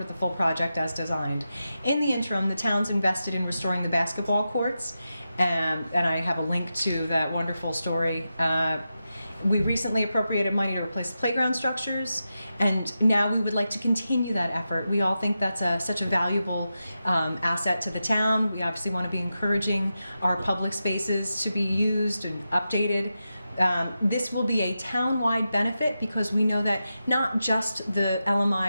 the full project as designed. In the interim, the town's invested in restoring the basketball courts, and I have a link to that wonderful story. We recently appropriated money to replace the playground structures, and now we would like to continue that effort. We all think that's such a valuable asset to the town. We obviously want to be encouraging our public spaces to be used and updated. This will be a town-wide benefit because we know that not just the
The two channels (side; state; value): both; inverted; correlation -0.90